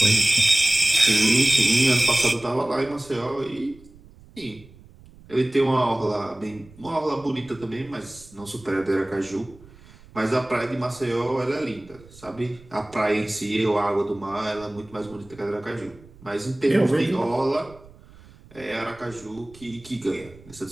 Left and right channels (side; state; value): right; noise; rumble, 23 dB below the sound